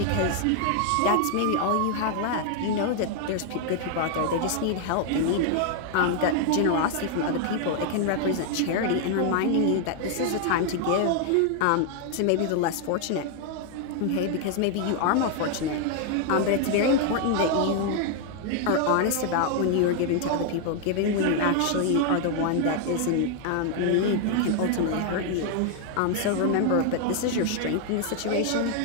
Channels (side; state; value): both; different; correlation 0.00